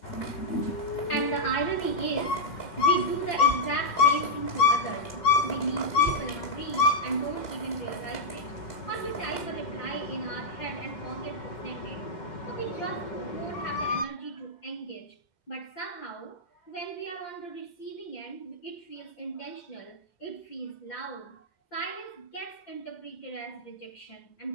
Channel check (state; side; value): late; right; 2.1 ms